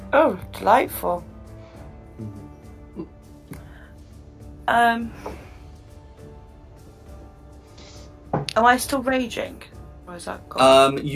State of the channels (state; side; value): identical; both; correlation 1.00